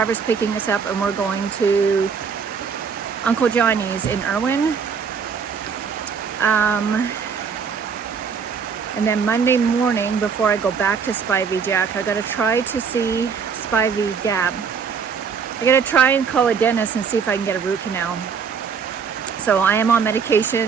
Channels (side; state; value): left; quieter; 6.2 dB